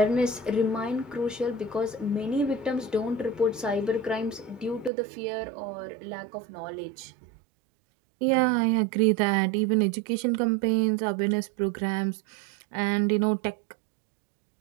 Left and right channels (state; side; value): drops out; left; at 4.9 s